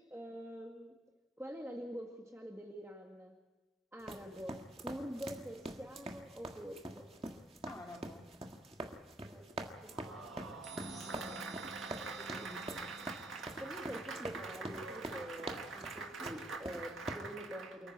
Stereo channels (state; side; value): normal; both; correlation 0.69